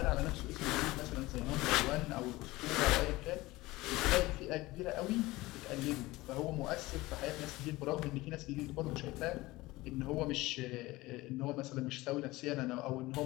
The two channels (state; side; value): quieter; right; 19.7 dB